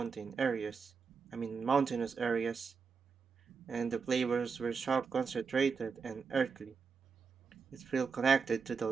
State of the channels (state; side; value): quieter; left; 5.4 dB